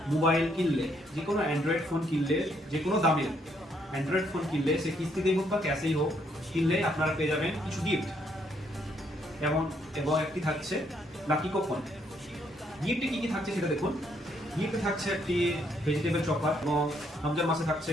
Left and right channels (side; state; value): both; normal; correlation 0.71